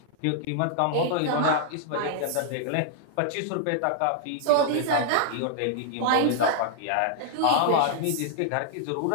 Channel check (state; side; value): different; both; correlation -0.01